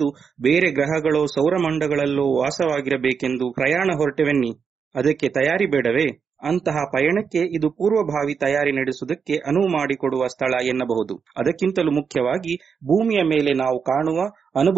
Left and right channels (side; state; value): left; quieter; 6.3 dB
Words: ಬೇರೆ ಗ್ರಹಗಳೋ ಸೌರಮಂಡಗಳಲ್ಲೋ ವಾಸವಾಗಿರಬೇಕೆಂದು ಪ್ರಯಾಣ ಹೊರಟೆವೆನ್ನಿ. ಅದಕ್ಕೆ ತಯಾರಿ ಬೇಡವೇ? ಅಂತಹ ಪಯಣಕ್ಕೆ ಇದು ಪೂರ್ವಭಾವಿ ತಯಾರಿ ನಡೆಸುವುದಕ್ಕೆ ಅನುವು ಮಾಡಿಕೊಡುವ ಸ್ಥಳ ಎನ್ನಬಹುದು. ಅದಕ್ಕಿಂತಲೂ ಮುಖ್ಯವಾಗಿ ಭೂಮಿಯ ಮೇಲೆ ನಾವು ಕಾಣುವ,